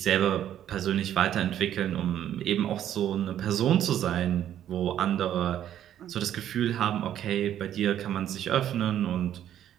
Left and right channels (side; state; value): left; quieter; 10.9 dB